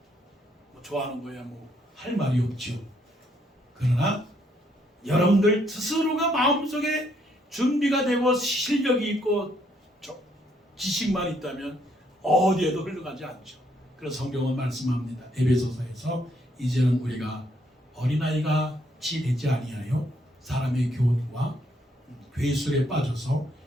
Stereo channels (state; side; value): normal; both; correlation 0.71